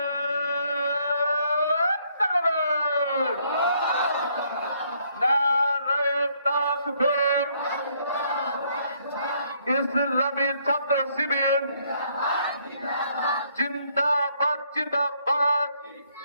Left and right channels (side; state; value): both; inverted; correlation -0.69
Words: ইসলামী ছাত্র শিবির জিন্দাবাদ জিন্দাবাদ।